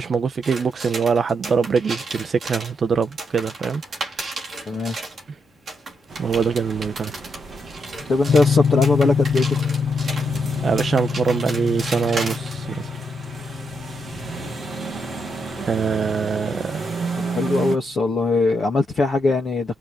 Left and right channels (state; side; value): normal; both; correlation 0.80